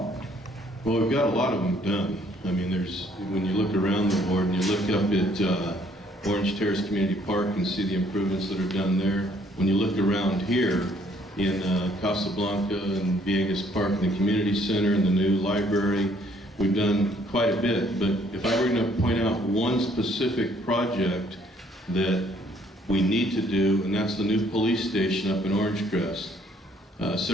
Well, we've got a lot of them done. I mean, when you look around the ward and you look up at Orange Terrace Community Park and see the improvements that are done there. When you look around here in Casablanca and Viegas Park and the community center and the new library, we've done quite a bit. But if I were going to point out one specific project that we need to do, and that's the new police station up in Orange Crest.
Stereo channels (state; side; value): normal; both; correlation 0.64